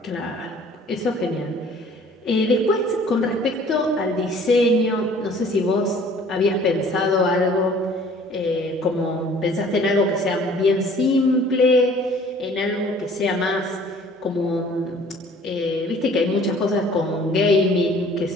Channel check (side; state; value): both; normal; correlation 0.52